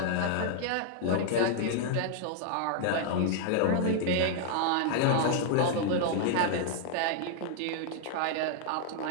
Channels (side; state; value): both; different; correlation 0.00